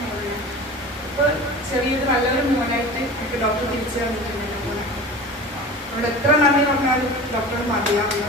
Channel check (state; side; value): normal; both; correlation 0.35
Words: മോനെ. ഇപ്പോൾ ചെറിയൊരു നല്ലൊരു മോനായിട്ട് എനിക്ക് ഡോക്ടർ തിരിച്ചു തന്നിട്ടുണ്ട് മോനെ. അവിടെ എത്ര നന്ദി പറഞ്ഞാലും ഡോക്ടർ മതിയാവില്ല.